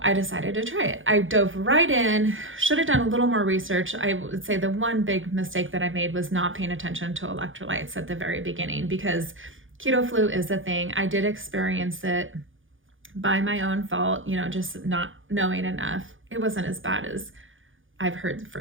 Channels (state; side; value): late; left; 0.58 ms